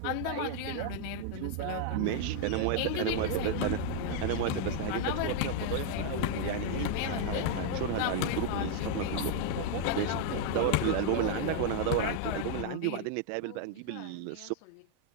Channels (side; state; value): both; different; correlation 0.00